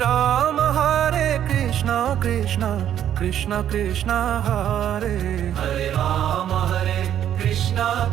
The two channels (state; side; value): quieter; left; 10.4 dB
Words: Hare Krishna Krishna Krishna Krishna Hare Hare Rama Hare Krishna